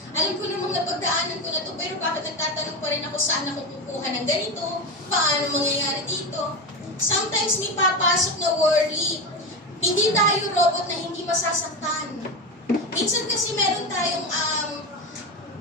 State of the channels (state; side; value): normal; both; correlation 0.18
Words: Alam ko namang napagdaanan ko na to, pero bakit nagtatanong pa rin ako saan ako kukuha ng ganito? Paano mangyayari dito? Sometimes may papasok na worry. Hindi tayo robot na hindi masasaktan. Minsan kasi meron tayong